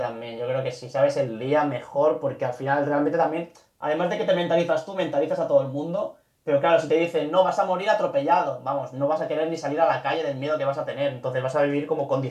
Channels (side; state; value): both; identical; correlation 1.00